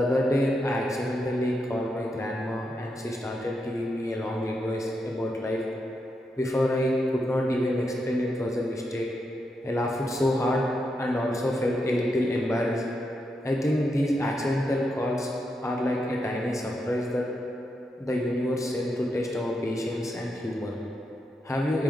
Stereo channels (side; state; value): both; normal; correlation 0.83